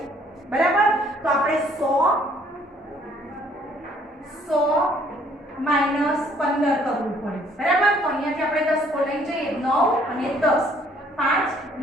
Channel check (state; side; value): normal; both; correlation 0.62